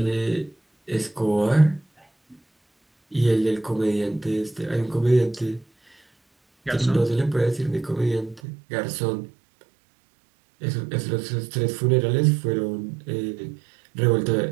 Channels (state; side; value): drops out; left; at 8.4 s